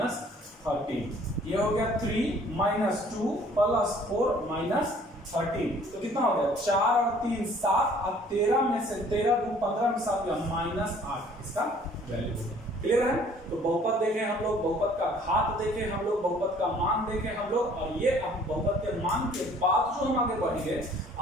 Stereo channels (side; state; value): both; normal; correlation 0.56